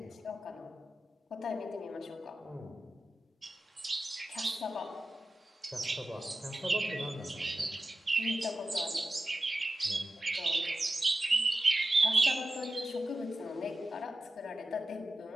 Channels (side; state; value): both; normal; correlation 0.93